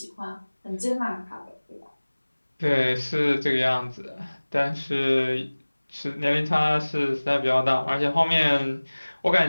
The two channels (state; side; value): inverted; both; correlation -1.00